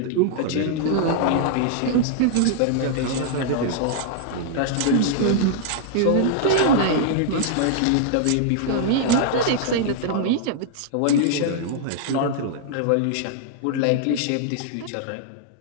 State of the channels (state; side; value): different; both; correlation -0.01